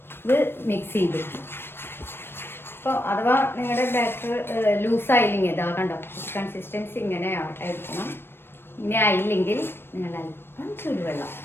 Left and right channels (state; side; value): late; right; 0.11 ms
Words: ഇത് മിക്സ് ചെയ്ത് അപ്പോൾ അഥവാ നിങ്ങളുടെ ബാറ്റർ ലൂസായില്ലെങ്കിൽ ഇതാ കണ്ടോ, കൺസിസ്റ്റൻസി ഇങ്ങനെ ആയിരിക്കണം. ഇങ്ങനെ ആയില്ലെങ്കിൽ നിങ്ങൾ അല്പം ചൂടുവെള്ളം,